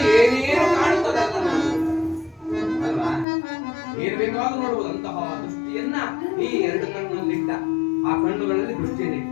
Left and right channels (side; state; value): right; drops out; at 3.2 s